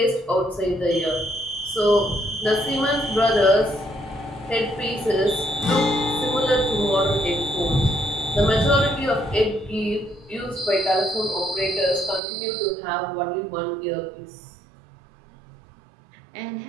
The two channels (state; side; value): drops out; left; at 12.2 s